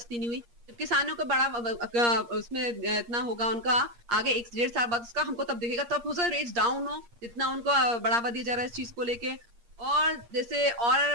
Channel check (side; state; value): left; late; 8.5 ms